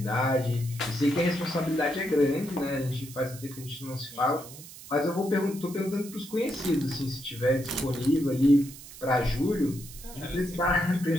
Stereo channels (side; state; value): right; noise; hiss, 16 dB below the sound